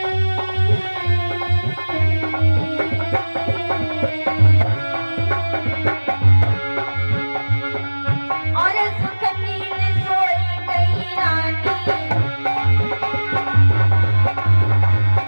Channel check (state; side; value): inverted; both; correlation -1.00